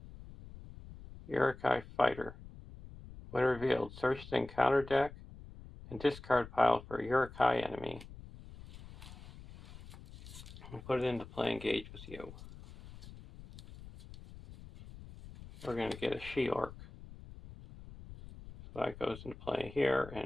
Uruk-hai Fighter. When revealed, search the encounter deck and discard pile for a Uruk-hai enemy and put it into play engage with you. We're going to get a She-Orc. So that goes into play here,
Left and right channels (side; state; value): left; noise; rumble, 16 dB below the sound